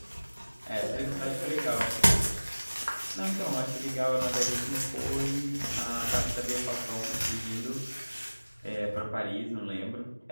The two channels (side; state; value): both; inverted; correlation -1.00